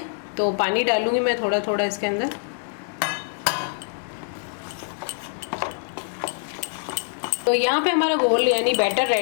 तो पानी डालूंगी मैं थोड़ा थोड़ा इसके अंदर। तो यहाँ पे हमारा घोल यानी बैटर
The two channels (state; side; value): silent; right; 58 dB below the other